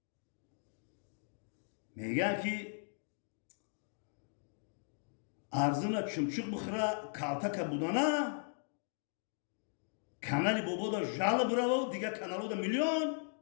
میگن که ارزنا چمچق بخوره کالتک بودنه کانالی بابا دا جالب براو دیگه کانالو دا میلیون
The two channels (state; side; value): silent; right; digital silence